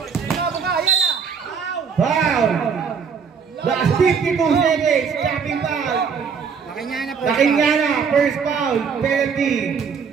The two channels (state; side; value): quieter; left; 6.2 dB